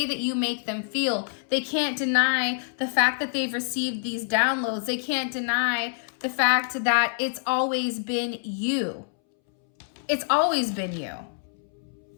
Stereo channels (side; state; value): right; silent; 61 dB below the other